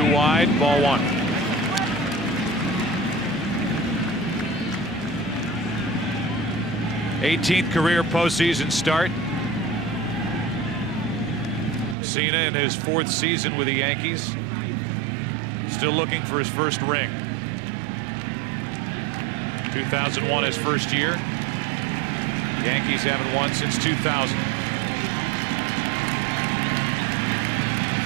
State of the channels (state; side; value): drops out; left; at 12.0 s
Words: inside, ball 1. '18th career postseason start. Cena in his 4th season with the Yankees. Still looking for his first ring. 2001 his first year. Yankees haven't won since 2000.